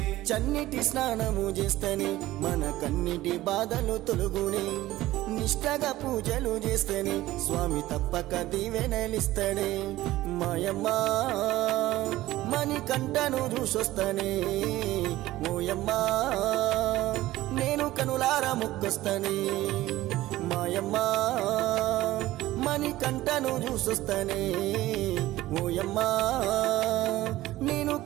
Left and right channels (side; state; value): left; quieter; 16.4 dB